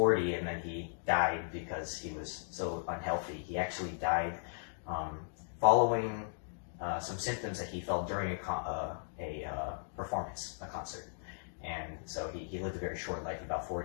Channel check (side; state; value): right; silent; digital silence